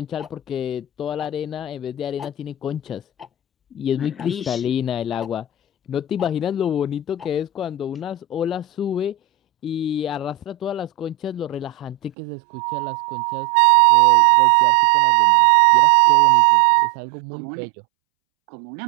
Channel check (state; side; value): drops out; left; at 12.2 s